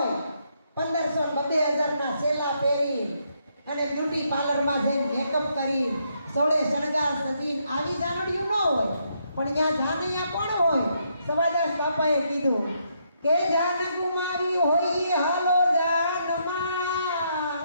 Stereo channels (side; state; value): both; inverted; correlation -0.75